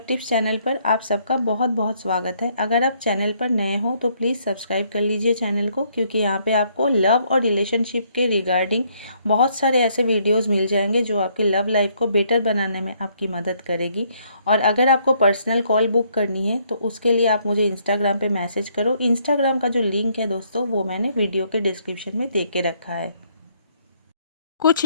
tips channel पर आप सबका बहुत बहुत स्वागत है। अगर आप चैनल पर नए हो तो प्लीज़ सब्सक्राइब कर लीजिए चैनल को, क्योंकि यहाँ पे आपको लव और रिलेशनशिप के रिगार्डिंग बहुत सारे ऐसे वीडियोस मिल जाएंगे जो आपकी लव लाइफ को बेटर बनाने में आपकी मदद करेगी। और अगर आपको पर्सनल कॉल बुक करनी है तो उसके लिए आप मुझे इंस्टाग्राम पर मैसेज करो। इंस्टाग्राम का जो लिंक है दोस्तों वो मैंने वीडियो के डिस्क्रिप्शन में दे के रखा है। कुछ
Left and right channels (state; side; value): inverted; both; correlation -0.69